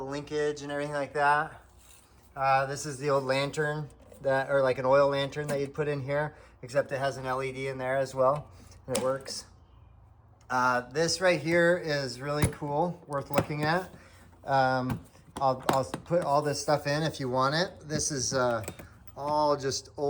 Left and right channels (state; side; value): identical; both; correlation 1.00